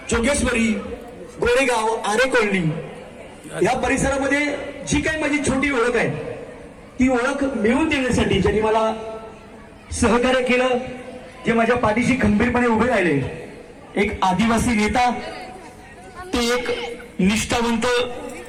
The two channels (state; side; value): identical; both; correlation 1.00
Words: जोगेश्वरी, गोरेगाव, आरे कॉलनी या परिसरामध्ये जी काही माझी छोटी ओळख आहे ती ओळख मिळवून देण्यासाठी ज्यांनी मला सहकार्य केलं, जे माझ्या पाठीशी खंबीरपणे उभे राहिले, एक आदिवासी नेता, ते एक निष्ठावंत